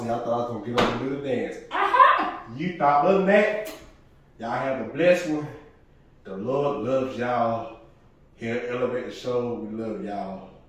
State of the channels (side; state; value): both; identical; correlation 1.00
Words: I thought I was gonna get up and do the dance. Aha! You thought, other than that, y'all have a blessed one. The Lord loves y'all. Here at Elevate the Show, we love y'all.